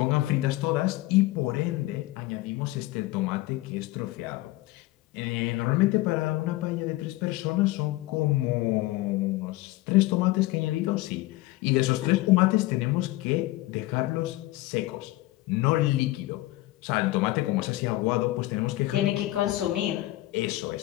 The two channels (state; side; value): quieter; right; 18.3 dB